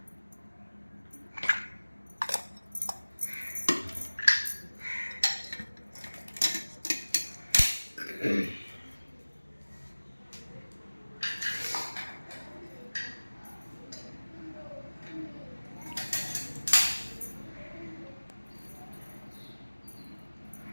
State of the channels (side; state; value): both; inverted; correlation -1.00